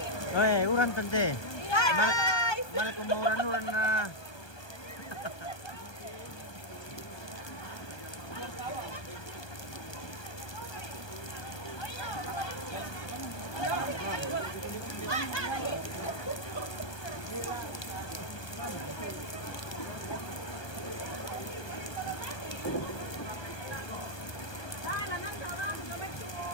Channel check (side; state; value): right; late; 1.2 ms